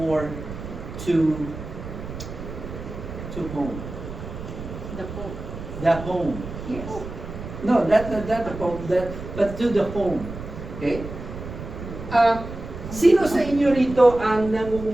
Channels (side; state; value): right; noise; rumble, 10 dB below the sound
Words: to home. The Pope. The home. Yes. No, not the Pope, but to the home. Okay? Sino sa inyo rito ang